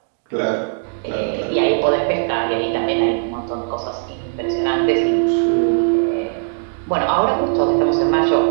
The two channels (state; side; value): silent; left; digital silence